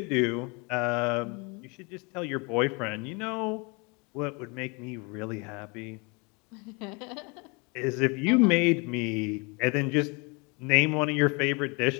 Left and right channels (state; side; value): quieter; right; 30.3 dB